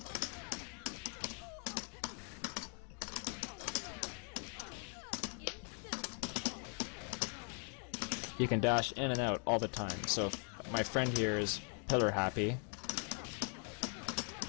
You can dash in and out all the time, so if my friend here is pillar happy,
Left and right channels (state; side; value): quieter; right; 39.1 dB